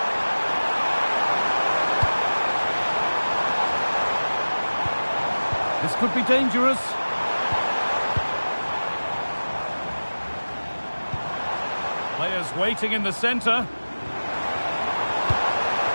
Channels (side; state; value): both; inverted; correlation -1.00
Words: This could be dangerous. Players waiting in the centre.